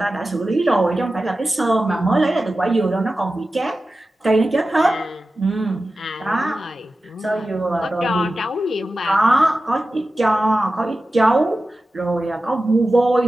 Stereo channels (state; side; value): normal; both; correlation 0.94